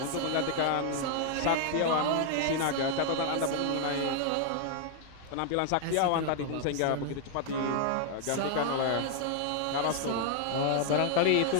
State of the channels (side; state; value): both; different; correlation 0.00